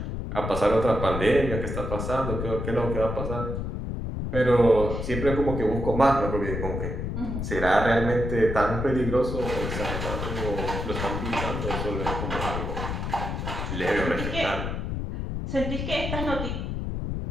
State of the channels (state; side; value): noise; left; rumble, 3 dB below the sound